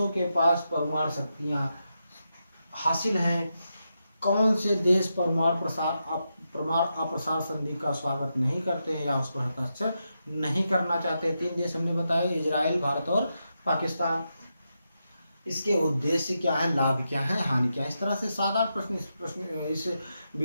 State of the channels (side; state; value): both; inverted; correlation -0.86